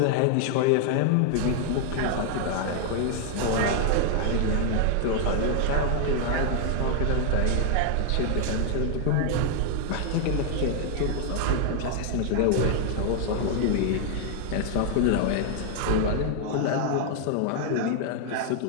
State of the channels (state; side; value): different; both; correlation 0.00